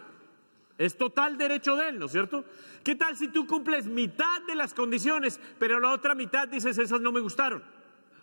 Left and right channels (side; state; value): both; inverted; correlation -1.00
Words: Es total derecho de Él, ¿no es cierto? ¿Qué tal si tú cumples mitad de las condiciones, pero la otra mitad dices, esas no me gustaron?